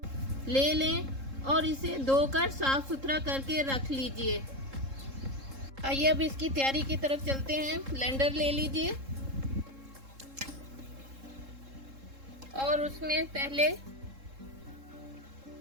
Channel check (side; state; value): left; late; 3.7 ms